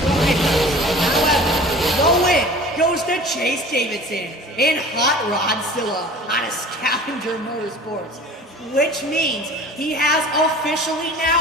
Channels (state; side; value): normal; both; correlation 0.42